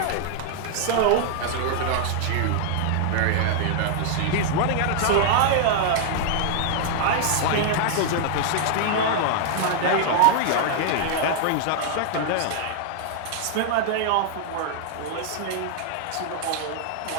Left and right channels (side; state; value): both; different; correlation -0.01